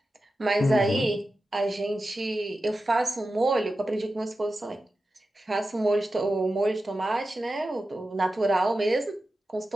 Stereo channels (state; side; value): normal; both; correlation 0.92